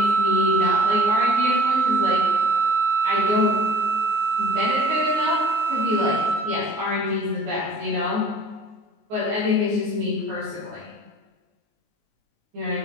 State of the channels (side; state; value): left; late; 19 ms